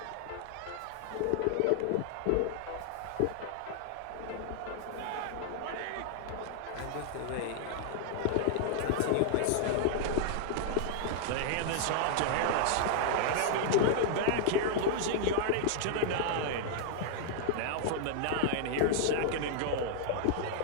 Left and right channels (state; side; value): different; both; correlation -0.01